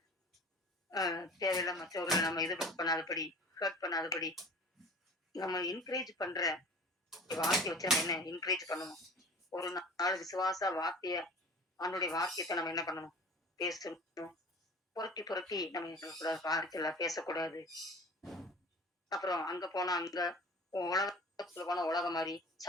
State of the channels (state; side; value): normal; both; correlation 0.42